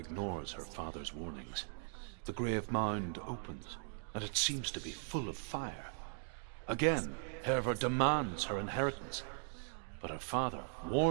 her father's warnings. The grave mound opens, and it seems to be full of fire. Again, Hervor demands her inheritance, but her father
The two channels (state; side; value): silent; left; 52 dB below the other